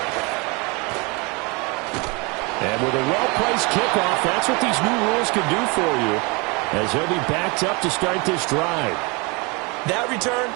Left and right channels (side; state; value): left; quieter; 28.7 dB